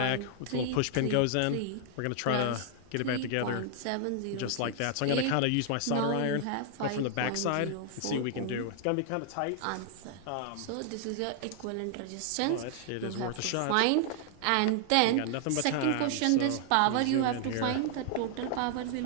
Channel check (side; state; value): both; different; correlation 0.00